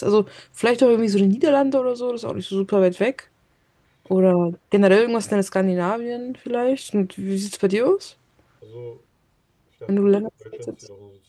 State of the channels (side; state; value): both; identical; correlation 1.00